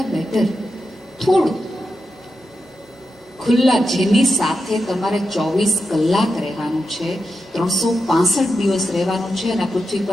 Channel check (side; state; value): both; normal; correlation 0.88